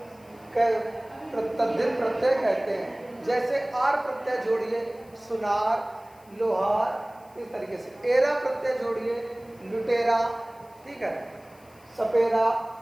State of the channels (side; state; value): left; noise; hiss, 29 dB below the sound